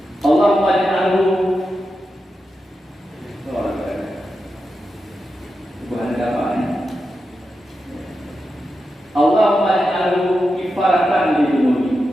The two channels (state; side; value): normal; both; correlation 0.89